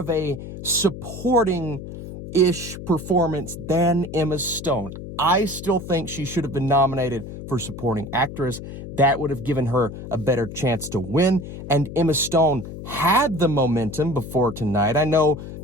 a supporting-ish performance than Emma Stone. I still think she should have been nominated for supporting actress. That would have given her a better chance to win. And Emma Stone had the momentum before tonight. I know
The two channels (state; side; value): noise; left; hum, 11 dB below the sound